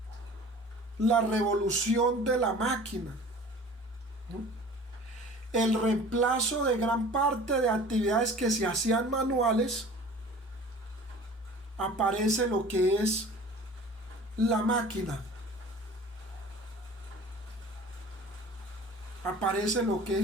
la revolución de la máquina, ¿no? El reemplazo de gran parte de actividades que se hacían manuales, aparece lo que es la máquina. Aparece lo que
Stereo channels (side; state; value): both; normal; correlation 0.44